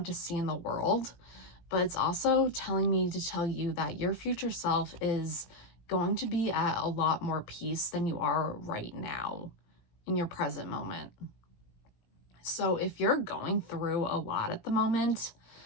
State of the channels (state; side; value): late; right; 17 ms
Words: to see in the world, but it's also telling me to tell you that your future self is going to be at a lot more peace than you are right now in your present moment. So if you're going through a lot at the moment,